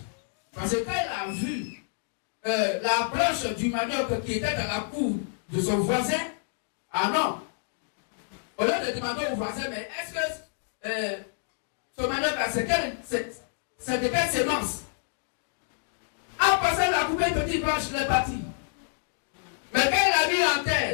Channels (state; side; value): silent; right; digital silence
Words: Parce que quand il a vu la branche du manioc qui était dans la cour de son voisin, ah non. Au lieu de demander au voisin, mais est-ce que ce manioc, c'est de quelle sémence? En passant la couper une petite branche, il est parti. Mais quand il a mis en